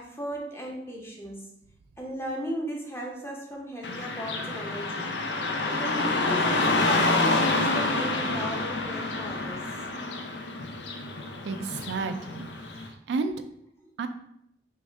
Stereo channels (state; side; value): normal; both; correlation 0.11